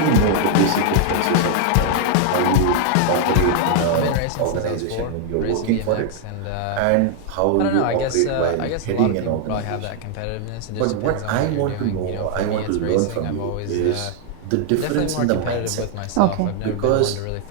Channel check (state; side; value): different; both; correlation 0.00